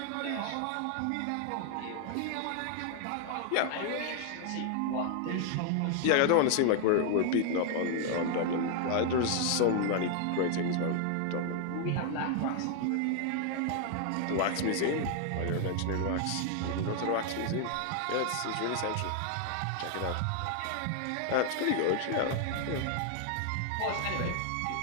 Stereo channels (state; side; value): different; both; correlation 0.00